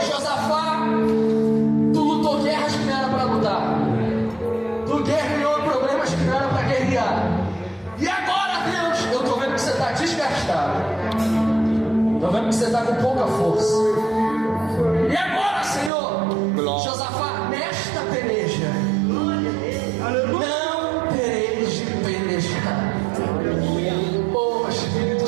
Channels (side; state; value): left; drops out; at 15.9 s